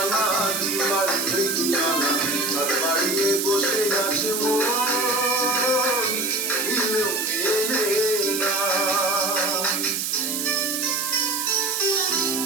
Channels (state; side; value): noise; right; hiss, 2 dB below the sound